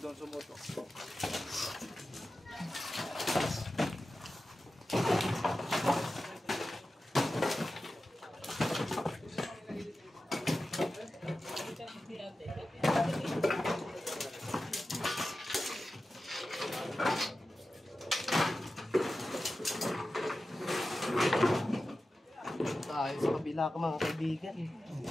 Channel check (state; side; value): normal; both; correlation 0.93